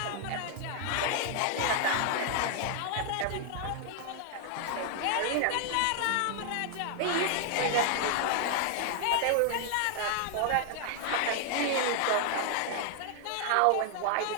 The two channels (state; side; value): different; both; correlation 0.00